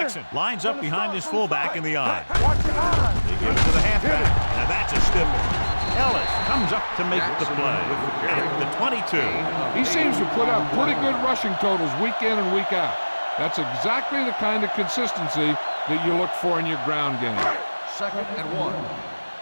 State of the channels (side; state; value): both; inverted; correlation -1.00